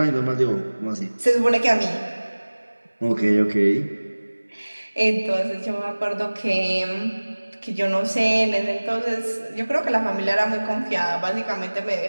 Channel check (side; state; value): both; inverted; correlation -1.00